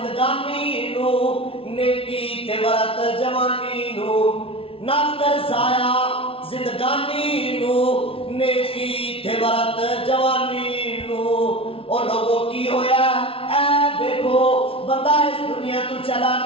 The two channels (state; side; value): late; right; 0.26 ms